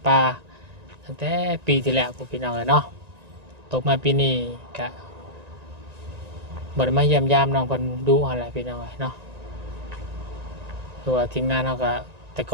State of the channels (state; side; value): late; left; 1.9 ms